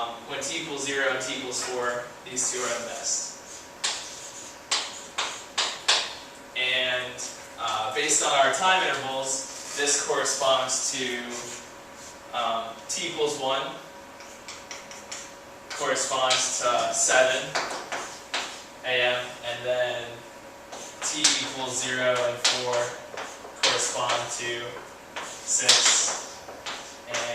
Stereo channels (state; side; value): identical; both; correlation 1.00